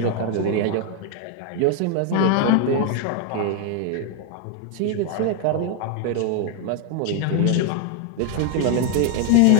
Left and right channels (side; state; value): both; different; correlation 0.01